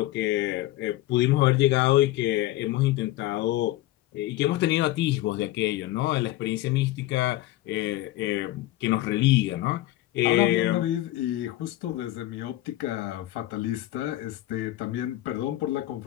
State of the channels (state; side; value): quieter; right; 15.9 dB